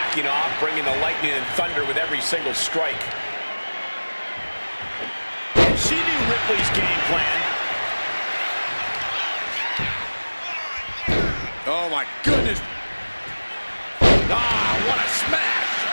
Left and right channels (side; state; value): both; inverted; correlation -1.00